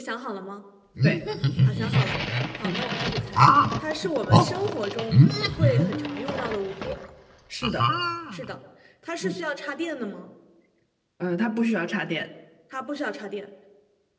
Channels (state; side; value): identical; both; correlation 1.00